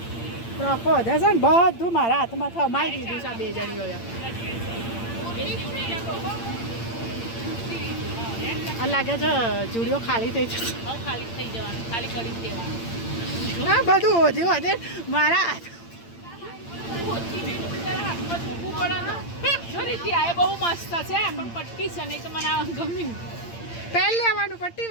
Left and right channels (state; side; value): late; right; 8.8 ms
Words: રખો છે ને, બધું મારા હાથમાં થમાઈ દીધું છે આ બે જણીઓએ. આ લાગે છે જુડીઓ ખાલી થઈ જશે. ખાલી થઈ જવાનું, ખાલી કરી દેવાનું. હા, બધું ઓછું વધે મારા હાથ. બહુ મસ્ત છે પણ પટ્ટી છે નહીં તો મને આ ગમ્યું. પહેલ લેવાનું પટ્ટી